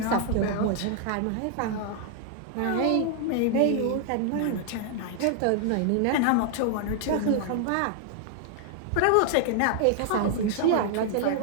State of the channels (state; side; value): different; both; correlation 0.00